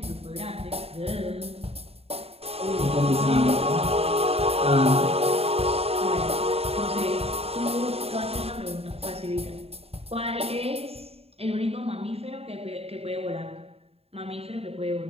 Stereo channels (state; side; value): late; left; 0.29 ms